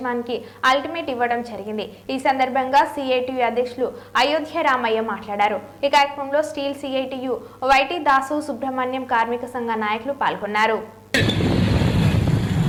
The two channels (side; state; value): both; identical; correlation 1.00